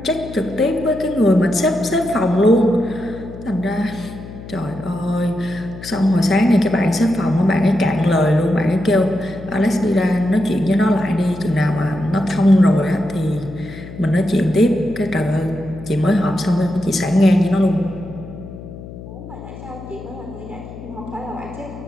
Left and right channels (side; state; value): left; noise; hum, 14 dB below the sound